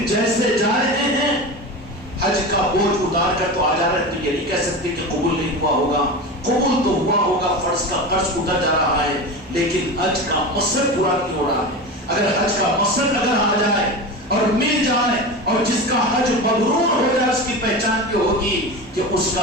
جیسے جا رہے ہیں حج کا بوجھ اتار کر تو آ جا رہے ہیں، تو یہ نہیں کہہ سکتے کہ قبول نہیں ہوا ہوگا. قبول تو ہوا ہوگا، فرض کا قرض اتر جا رہا ہے، لیکن حج کا مقصد پورا نہیں ہو رہا ہے. اگر حج کا مقصد اگر آ جائے اور مل جائے اور جس کا حج مبرور ہو جائے، اس کی پہچان یہ ہوگی کہ اس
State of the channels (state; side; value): normal; both; correlation 0.26